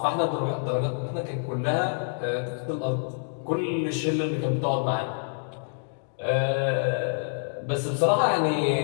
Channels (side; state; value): right; silent; digital silence